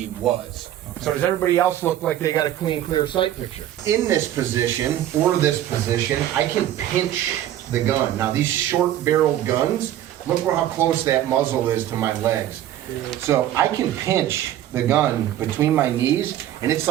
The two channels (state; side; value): quieter; left; 12.3 dB